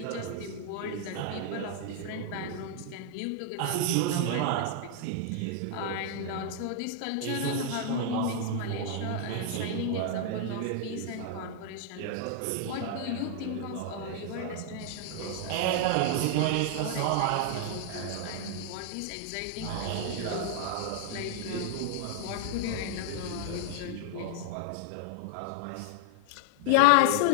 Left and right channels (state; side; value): different; both; correlation -0.01